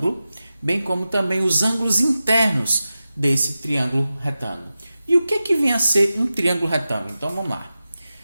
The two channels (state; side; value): inverted; both; correlation -0.94